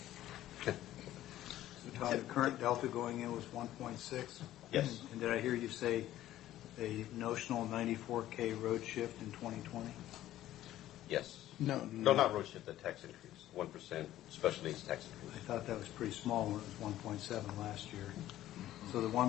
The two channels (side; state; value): right; quieter; 13.7 dB